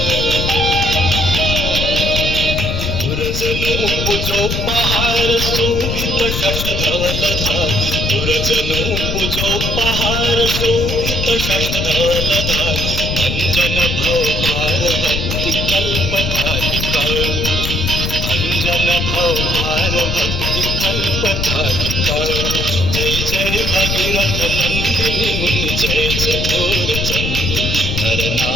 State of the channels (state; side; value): noise; left; rumble, 2 dB below the sound